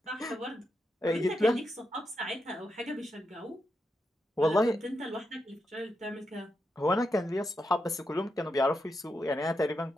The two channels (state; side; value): normal; both; correlation 0.85